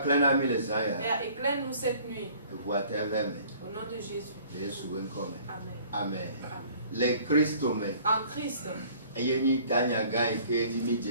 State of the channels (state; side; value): inverted; both; correlation -0.53